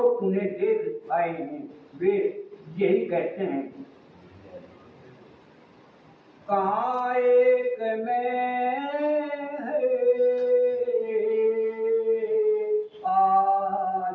उन्हें देख आए हैं वे यही कहते हैं कहाँ एक में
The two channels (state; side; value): identical; both; correlation 1.00